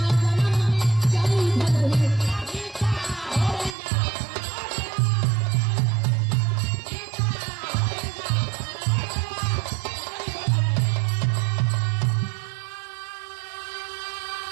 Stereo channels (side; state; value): left; drops out; at 3.8 s